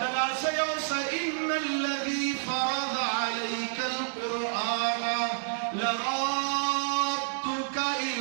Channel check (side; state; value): left; silent; 55 dB below the other